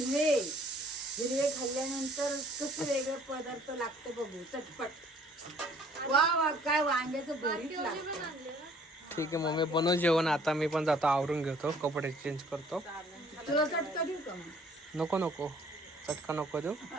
हिरवे खाल्ल्यानंतर कसं वेगळं पदार्थ लागतं बघू, चटपट. वा वा, काय वांग्याचं भरीत लागतं. ठीक आहे मग मी बनव जेवण. आता मी पण जातो, आवरून घेतो, कपडे चेंज करतो. तुला चटका देऊ का मग? नको नको, चटका नको देऊ.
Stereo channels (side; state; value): both; normal; correlation 0.58